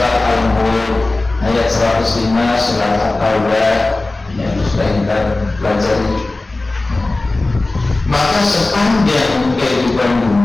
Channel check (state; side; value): quieter; right; 3.1 dB